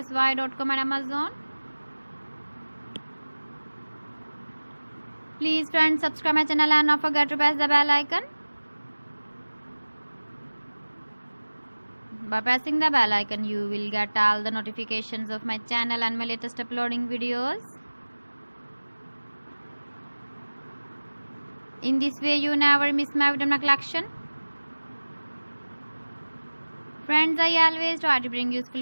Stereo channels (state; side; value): inverted; both; correlation -1.00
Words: and Amazon. Please friends, subscribe my channel and not forget to press the bell icon. By pressing the bell icon, you will get all the notifications of my channel and my latest uploading videos. In this way, you never miss my video collection. Friends, I always try to bring useful